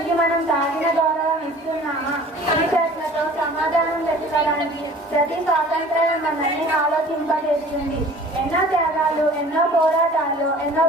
మనం తాగిన గౌరవం ఇస్తున్నామా? ఈ ప్రశ్నతో సమాధానం వెతకడానికి ప్రతి స్వాతంత్రం మనల్ని ఆలోచింపజేస్తుంది. ఎన్నో త్యాగాలు, ఎన్నో పోరాటాలు, ఎన్నో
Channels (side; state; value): both; normal; correlation 0.47